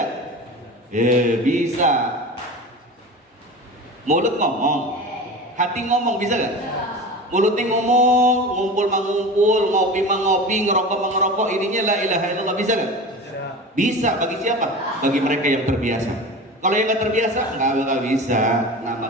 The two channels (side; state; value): both; normal; correlation 0.32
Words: Bisa. Mulut ngomong, hati ngomong bisa gak? Mulutnya ngomong, ngumpul mengumpul, ngopi mengopi, ngerokok mengerokok, ininya la ilaha illallah, bisa gak? Bisa. Bagi siapa? Bagi mereka yang terbiasa. Kalau yang nggak terbiasa nggak bisa. Nah